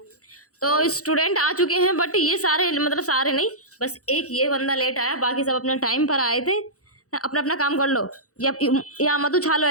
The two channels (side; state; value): right; late; 0.65 ms